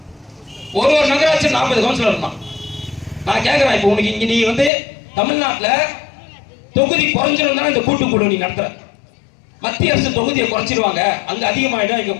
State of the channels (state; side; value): drops out; right; at 4.7 s